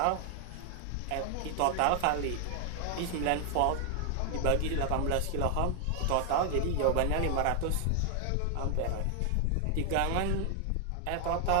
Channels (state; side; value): different; both; correlation 0.00